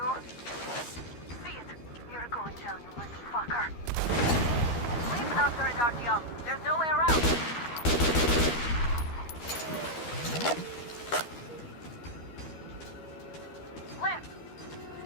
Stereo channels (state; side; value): late; right; 13 ms